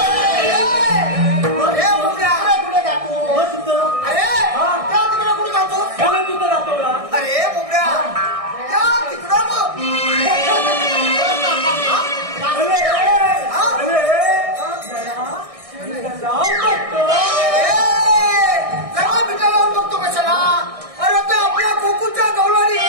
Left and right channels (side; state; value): left; late; 1.6 ms